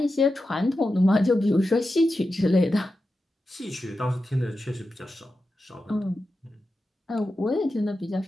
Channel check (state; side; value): normal; both; correlation 0.91